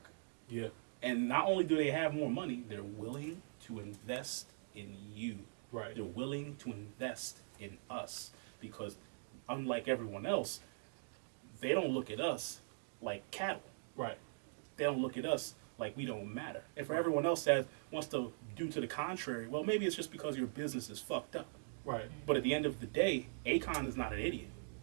Yeah. And not only do they have more money, they're willing to invest in you. Right. They're willing to invest in us because unlike everyone else, they don't look at us like cattle. Right. They don't look at us like we don't matter. And for everyone else that wants to do to the contrary, well, maybe it's just because your business is fucked up. Right. But at the end of the day, Akon is not an idiot.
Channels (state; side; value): silent; left; digital silence